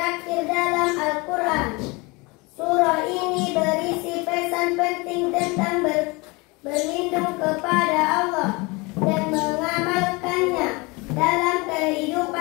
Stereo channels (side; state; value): right; quieter; 26.1 dB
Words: dalam Al-Quran. Surah ini berisi pesan penting tentang berlindung kepada Allah dan mengamalkannya dalam